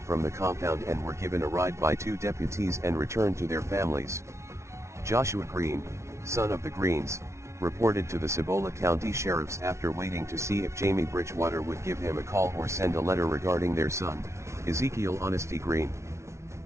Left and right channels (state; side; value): late; left; 0.13 ms